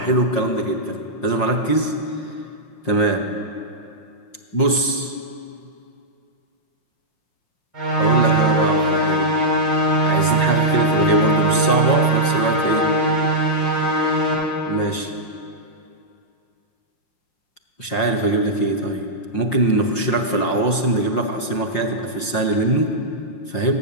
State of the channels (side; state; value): right; late; 5.6 ms